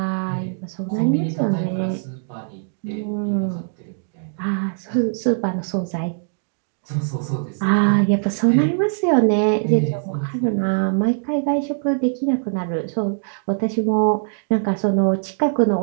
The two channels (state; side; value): silent; left; digital silence